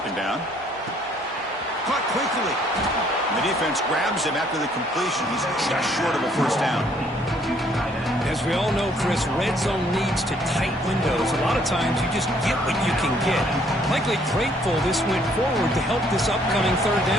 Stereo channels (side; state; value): both; normal; correlation 0.64